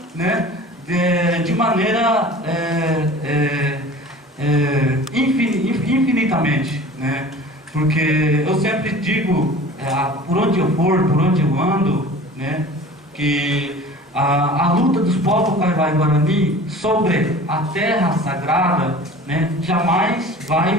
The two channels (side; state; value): both; normal; correlation 0.42